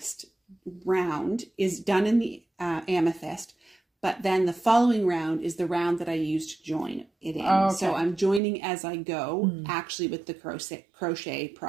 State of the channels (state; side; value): drops out; left; at 8.4 s